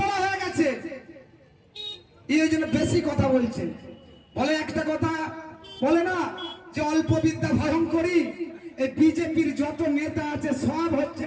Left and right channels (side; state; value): both; identical; correlation 1.00